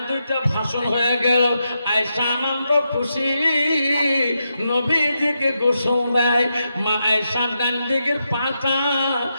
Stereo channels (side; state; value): both; inverted; correlation -0.85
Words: দুইটা ভাষণ হয়ে গেল। আয়েশা আনন্দ খুশি নবীজিকে গোসল দেয়। মা আয়েশার ডান দিকের পাটা